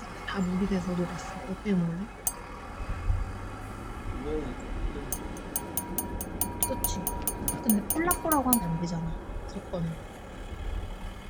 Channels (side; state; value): both; identical; correlation 1.00